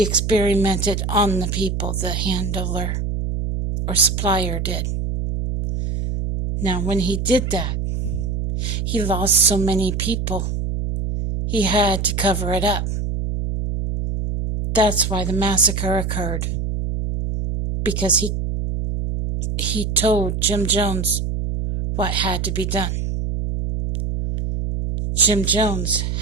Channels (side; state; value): right; noise; hum, 2 dB below the sound